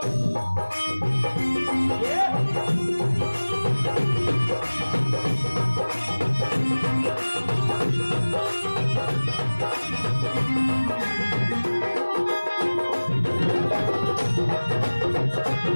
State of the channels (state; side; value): inverted; both; correlation -1.00